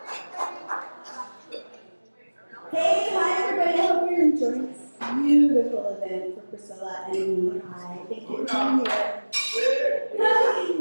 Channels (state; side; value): inverted; both; correlation -1.00